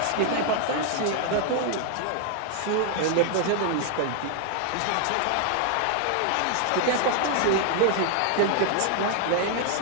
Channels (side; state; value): both; different; correlation 0.00